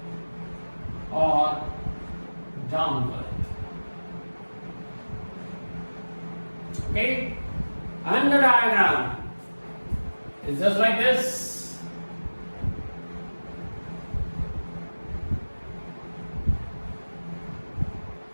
or downward. Okay, and the diagram is just like this.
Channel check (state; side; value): inverted; both; correlation -1.00